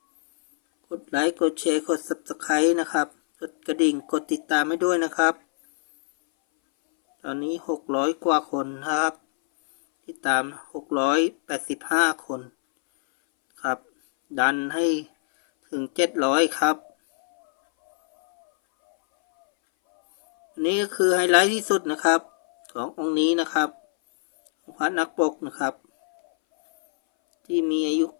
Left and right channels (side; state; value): right; silent; 61 dB below the other